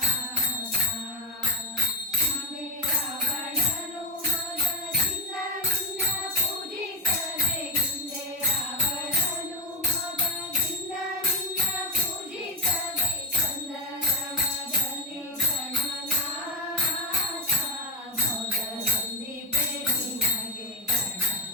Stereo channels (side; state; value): both; normal; correlation 0.13